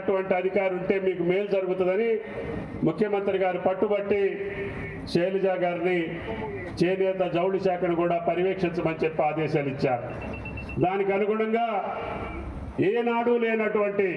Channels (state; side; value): identical; both; correlation 1.00